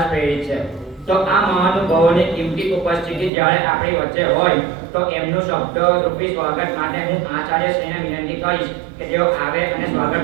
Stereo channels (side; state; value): left; drops out; at 3.3 s